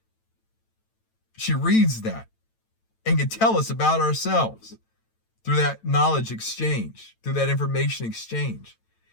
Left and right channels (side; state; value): right; late; 9.0 ms